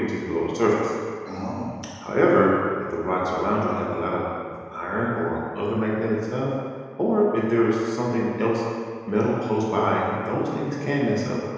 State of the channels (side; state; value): both; identical; correlation 1.00